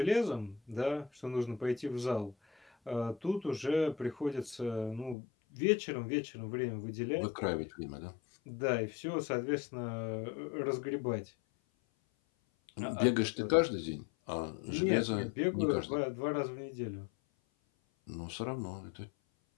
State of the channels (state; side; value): drops out; right; at 5.2 s